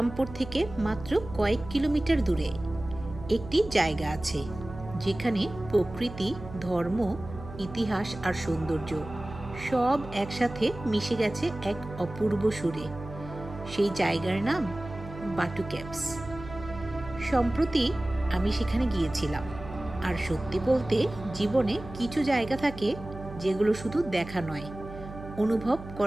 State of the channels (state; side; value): noise; right; hum, 13 dB below the sound